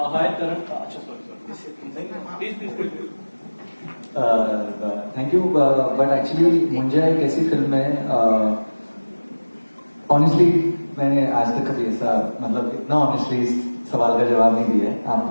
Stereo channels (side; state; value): both; inverted; correlation -1.00